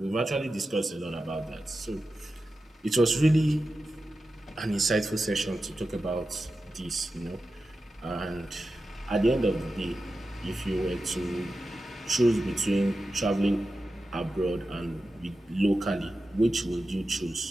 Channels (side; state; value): both; normal; correlation 0.92